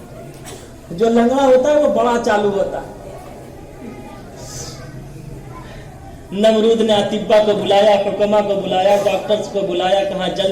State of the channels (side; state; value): both; identical; correlation 1.00